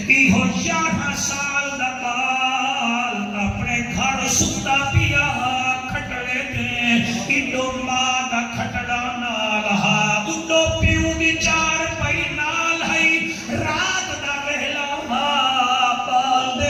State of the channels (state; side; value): identical; both; correlation 1.00